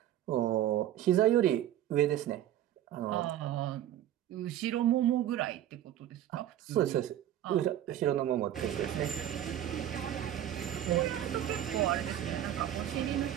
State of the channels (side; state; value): left; quieter; 11.7 dB